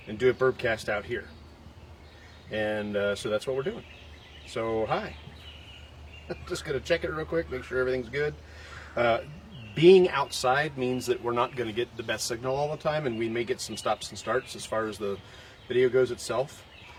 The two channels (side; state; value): both; identical; correlation 1.00